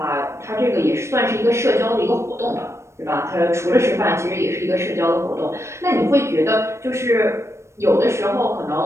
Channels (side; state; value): left; late; 0.13 ms